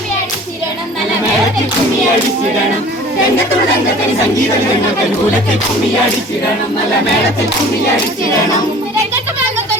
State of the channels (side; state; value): both; normal; correlation 0.46